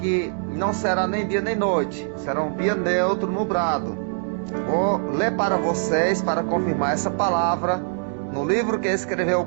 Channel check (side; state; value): left; silent; digital silence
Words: não será nem dia nem noite. Será um dia neutro, nublado. Vou ler para vocês, para confirmar essa palavra, no livro que escreveu